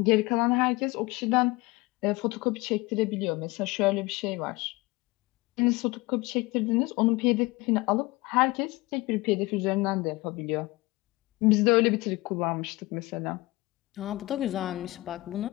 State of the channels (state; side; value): quieter; right; 21.5 dB